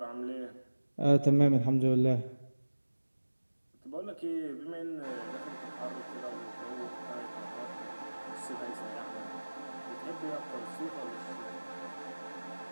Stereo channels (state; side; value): inverted; both; correlation -1.00